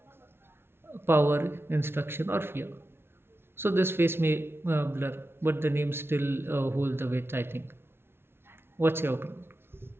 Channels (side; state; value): left; late; 0.12 ms